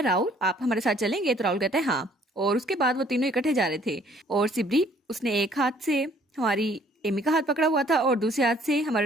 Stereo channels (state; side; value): normal; both; correlation 0.60